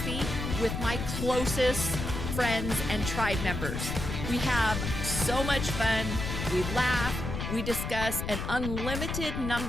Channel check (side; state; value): left; noise; rumble, 4 dB below the sound